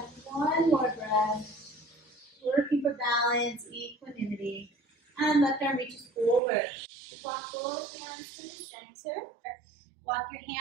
one more breath. Working for balance, equanimity. And left arm reaches forward. Walk both hands to the center. Walk your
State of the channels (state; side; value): drops out; left; at 6.4 s